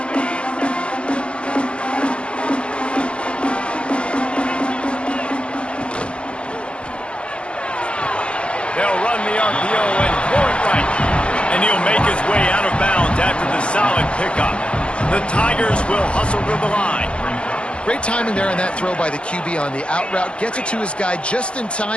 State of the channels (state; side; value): late; right; 0.059 ms